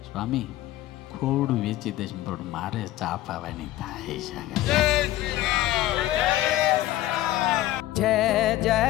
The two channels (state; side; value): quieter; right; 15.1 dB